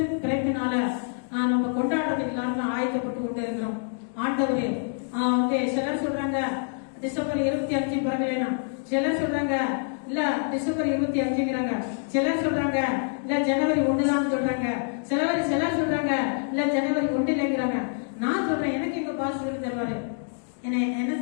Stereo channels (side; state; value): right; silent; 61 dB below the other